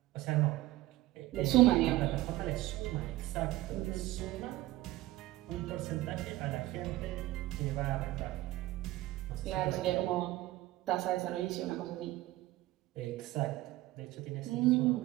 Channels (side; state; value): left; quieter; 17.2 dB